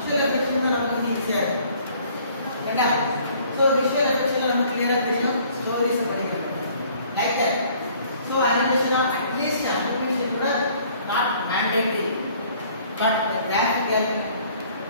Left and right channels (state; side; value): inverted; both; correlation -0.57